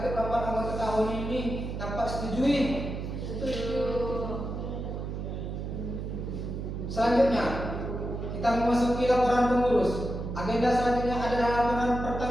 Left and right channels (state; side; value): noise; right; hum, 5 dB below the sound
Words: rapat anggota tahun ini dapat setujui? Setuju. Selanjutnya, kita memasuki laporan pengurus. Agenda selanjutnya adalah laporan